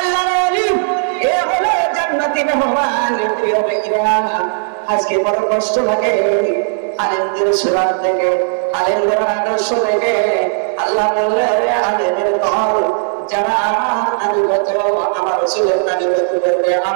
ওলি, এ হলো জান্নাতি মেহমান। প্রিয় ভাইরা, আজকে বড় কষ্ট লাগে আলেমদের সুরাত থেকে, আলেমদের আদর্শ থেকে। আল্লাহ বললেন আলেমের দল যারা আমার আনুগত, আমার রাসূলের আনুগত করবে,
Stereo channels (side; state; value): left; silent; digital silence